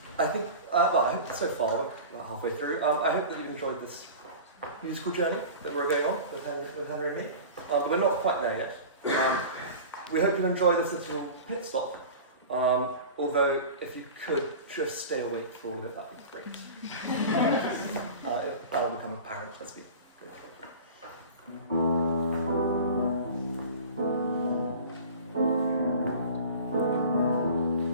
I think, well, I hope so far, we're halfway through, I hope that you enjoyed this musical journey that we're going on with Henry and me. But we're not quite there yet. We hope you enjoy this little pit stop. Although, if you could just stay awake for all of it, that'd be great. That'll become apparent as we go.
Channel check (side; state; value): both; inverted; correlation -0.36